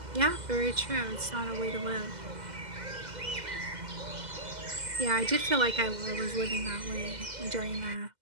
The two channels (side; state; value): left; late; 2.0 ms